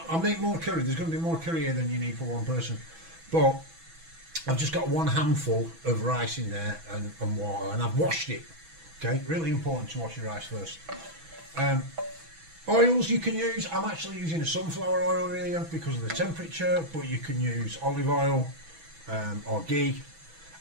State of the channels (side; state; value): left; late; 6.1 ms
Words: make more curry. There's going to be more curry here than you need for one person, but I've just got one handful of rice in there and water, and I've washed it. Okay, really important to wash your rice first. Oils you can use. I'm actually using a sunflower oil here because of the temperature, but you can use olive oil or ghee.